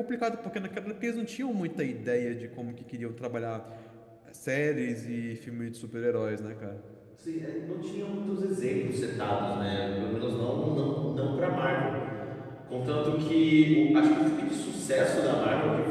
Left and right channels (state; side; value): identical; both; correlation 1.00